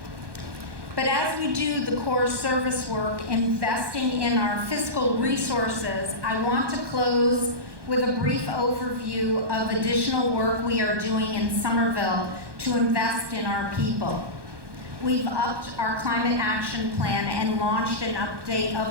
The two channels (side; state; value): left; late; 1.2 ms